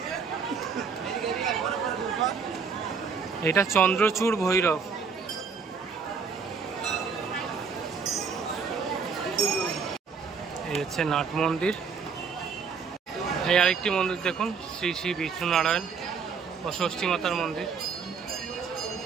এটা চন্দ্রচূড় ভৈরব। এই হচ্ছে নাট মন্দির। এই আরেকটি মন্দির দেখুন, শ্রী শ্রী বিষ্ণু নারায়ণ ও ষষ্ঠী মাতার মন্দির।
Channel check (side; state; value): left; quieter; 5.7 dB